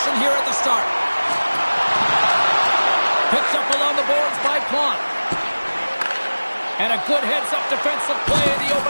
here at the start. Picked up along the boards by Plante. And a good heads-up defensive play in the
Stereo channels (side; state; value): both; inverted; correlation -1.00